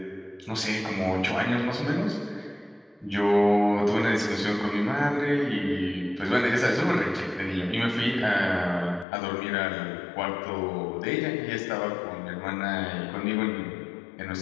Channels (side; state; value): right; drops out; at 9.1 s